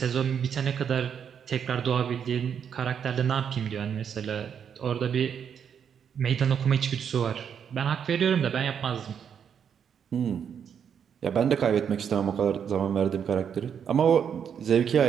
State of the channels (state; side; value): quieter; left; 7.8 dB